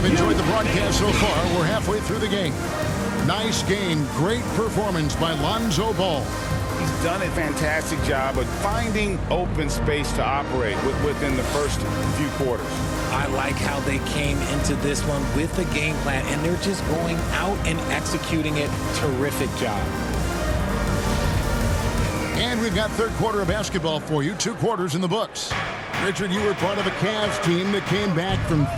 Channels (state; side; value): identical; both; correlation 1.00